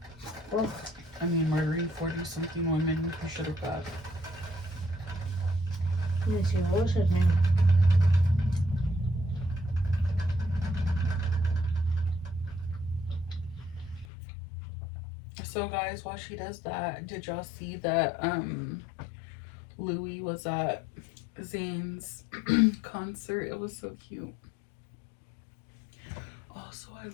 Well, I mean, murdering 40-something women, you should have got. Let me see, what was his name? So guys, while she does that, did y'all see that Louis was at Zayn's concert? It was so cute. Also, I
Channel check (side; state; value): right; drops out; at 14.1 s